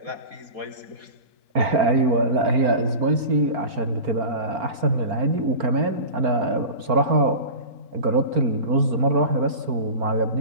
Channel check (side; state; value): left; late; 4.4 ms